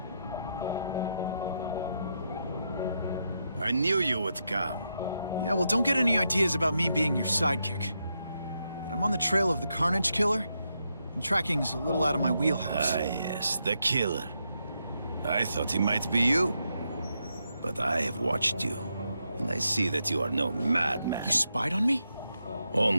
I knew you would come. Yeah, well, don't get any ideas about me being your sidekick. But I'm on the trail of the Carnage Killer, and tracking's a little out of my wheelhouse. Ah, yes, the killer. I thought he might be you. But I have watched you, and I see that you are no madman. You spied on me?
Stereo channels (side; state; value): both; inverted; correlation -0.83